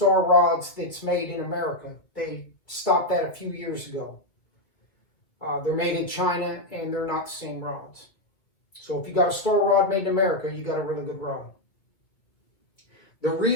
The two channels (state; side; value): late; right; 2.0 ms